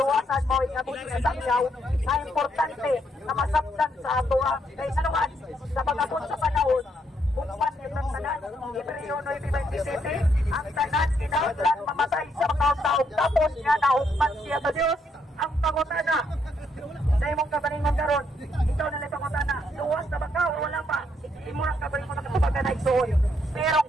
mo ikabot sa sakyaw, ay importante na masabtan sa ato kay sanuan sa pagabot sa panahon. Kung panin ng tanan, Hebreo 9:27, ang tanan kinahanglan mamatay sa mga taong tapos nga naugman siya sa Dios. Ang pangutana sa imong kabalingon karon, ikaw na lang pangutana, luwas na ba ka o wala pa? Imo ang kabalingon na kapag naigsuon. Pero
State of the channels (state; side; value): normal; both; correlation 0.74